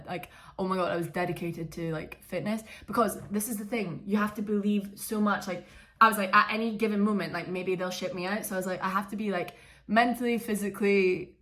Like, oh my god, I was dedicated to like fitness, because this is the thing, you have to believe so much. Like, I was like, at any given moment, like maybe they'll ship me out, so I was like, I have to be like mentally, physically,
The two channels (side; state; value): both; identical; correlation 1.00